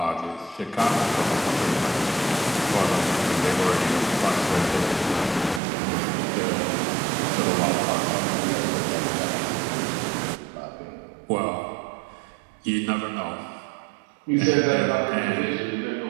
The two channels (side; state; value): left; drops out; at 5.6 s